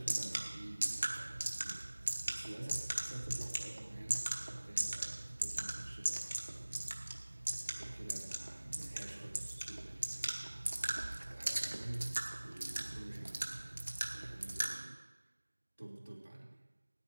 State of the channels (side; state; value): both; inverted; correlation -1.00